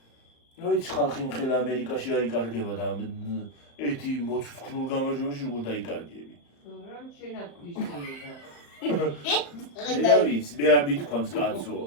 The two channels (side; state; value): right; late; 35 ms